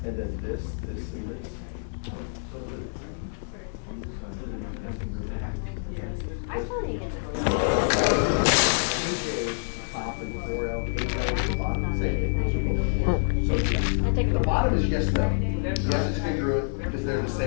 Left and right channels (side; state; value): right; silent; 60 dB below the other